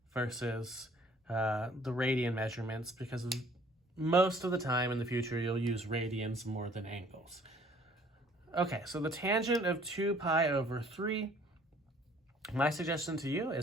versus the radian measurements, because most of the time in the future you'll use radians more than angles. Okay, so the tangent of 2 pi over 3. My suggestion to you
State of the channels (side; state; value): both; normal; correlation 0.57